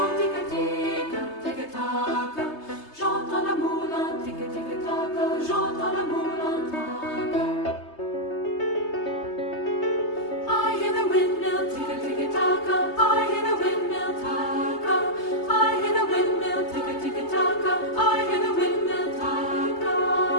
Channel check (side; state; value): right; late; 3.3 ms